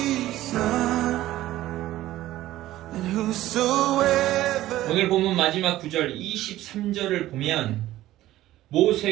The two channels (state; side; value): quieter; left; 14.9 dB